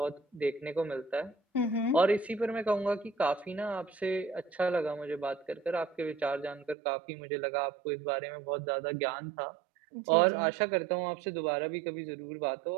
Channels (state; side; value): drops out; left; at 6.8 s